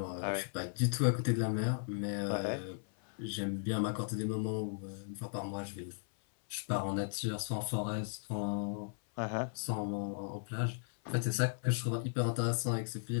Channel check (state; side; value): silent; right; 54 dB below the other